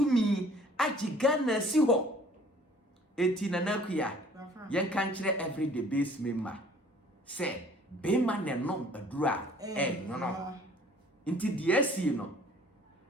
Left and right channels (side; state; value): both; normal; correlation 0.54